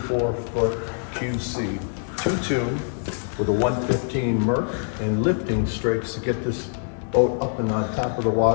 Pontoon with a 115 Merc and lifting strakes to get this boat up and on top of the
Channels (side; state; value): right; silent; digital silence